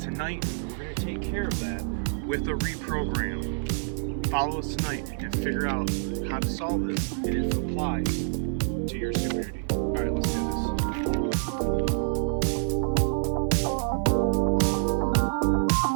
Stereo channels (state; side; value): silent; left; digital silence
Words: we're going to take care of that with a reprogram. Follow us tonight and figure out how to solve this and if it applies to your security. All right, let's do this.